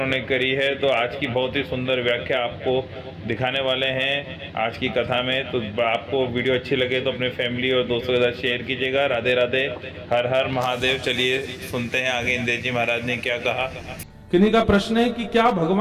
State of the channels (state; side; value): identical; both; correlation 1.00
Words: करी है। तो आज की बहुत ही सुंदर व्याख्या आपको दिखाने वाले हैं आज की कथा में। तो आपको वीडियो अच्छी लगे तो अपने फैमिली और दोस्तों के साथ शेयर कीजिएगा। राधे राधे, हर हर महादेव। चलिए सुनते हैं आगे इंद्रेश जी महाराज ने क्या कहा। किन्हीं का प्रश्न है कि क्या